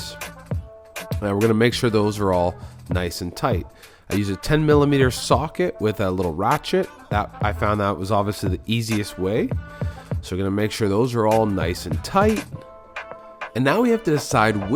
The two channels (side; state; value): both; identical; correlation 1.00